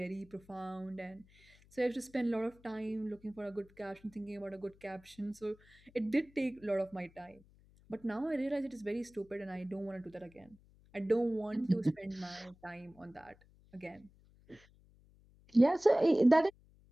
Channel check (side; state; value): left; noise; hum, 27 dB below the sound